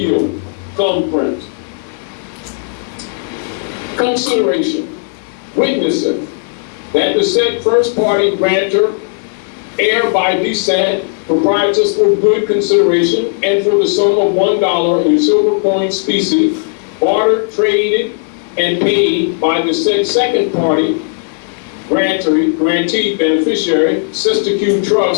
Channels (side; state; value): right; silent; digital silence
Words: Thumbprint. Consideration. Witnesseth that the said first party grantor, heir by descent, proprietors for good consideration, and for the sum of $1 in silver coin specie, bartered, traded, and paid by the said second party grantee beneficiary, Sister